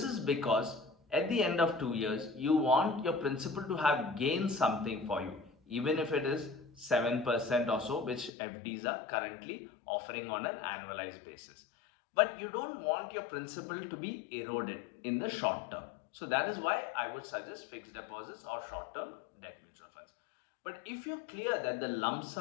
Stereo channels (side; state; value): right; drops out; at 8.3 s